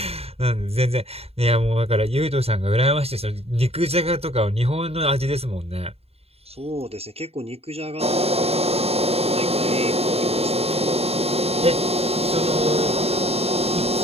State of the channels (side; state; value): left; late; 0.29 ms